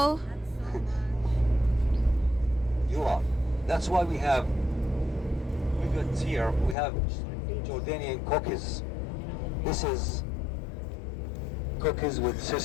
You are. That's why we got here, we have Jordanian cookies. This is cookies with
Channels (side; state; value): right; drops out; at 6.8 s